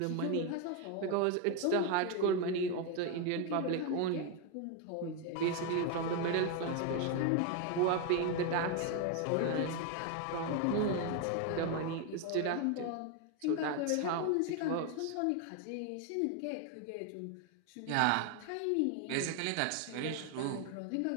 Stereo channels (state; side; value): different; both; correlation 0.01